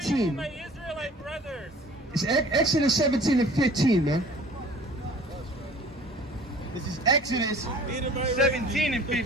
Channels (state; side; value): normal; both; correlation 0.48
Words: My Israelite brothers. It's Exodus 17 and 15, man. This is Exodus 17 and